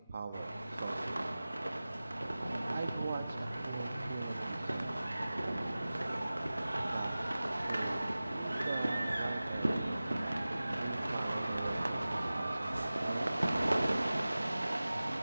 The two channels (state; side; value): inverted; both; correlation -0.97